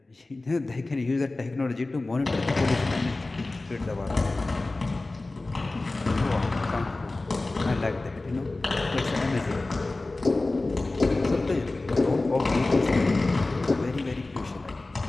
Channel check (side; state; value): right; quieter; 3.1 dB